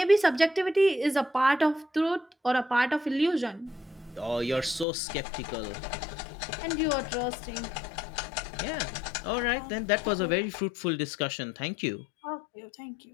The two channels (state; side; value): drops out; right; at 4.9 s